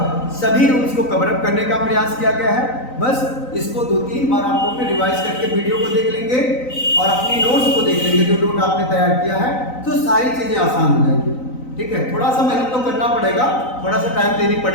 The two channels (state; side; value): late; right; 3.9 ms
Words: सभी रूल्स को कवर अप करने का प्रयास किया गया है। बस इसको 2-3 बार आप लोग रिवाइज करके वीडियो को देख लेंगे और अपनी नोट्स को देख लेंगे, जो नोट आपने तैयार किया है, तो सारी चीजें आसान हो जाएंगी। ठीक है, थोड़ा सा मेहनत तो करना पड़ेगा, थोड़ा सा टाइम देनी